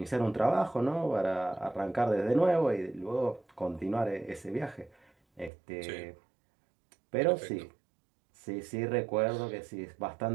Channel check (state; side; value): drops out; left; at 5.5 s